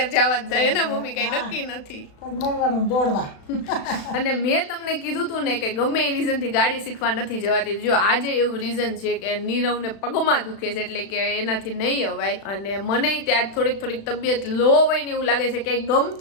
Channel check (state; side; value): late; right; 36 ms